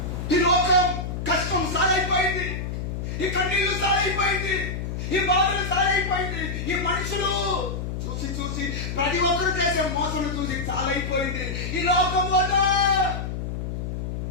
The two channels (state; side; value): noise; left; hum, 4 dB below the sound